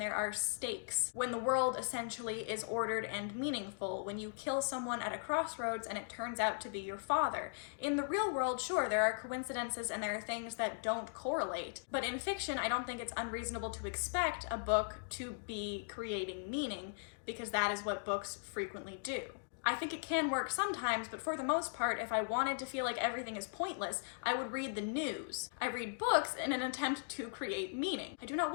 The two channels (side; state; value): right; silent; digital silence